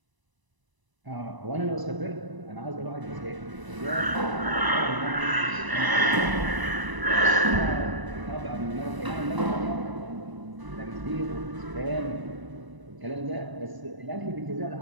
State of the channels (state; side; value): late; left; 1.0 ms